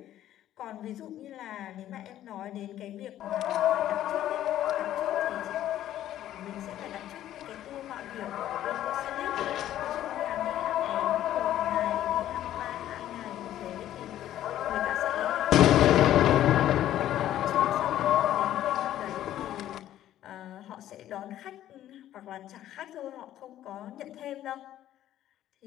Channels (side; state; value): right; quieter; 12.5 dB